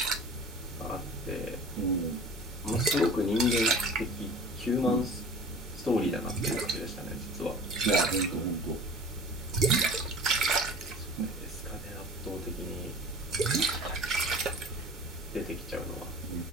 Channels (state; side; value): normal; both; correlation 0.42